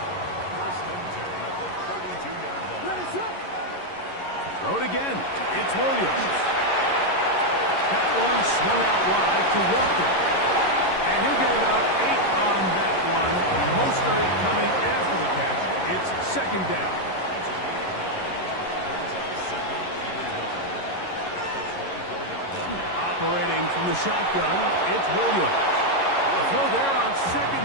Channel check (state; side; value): late; right; 11 ms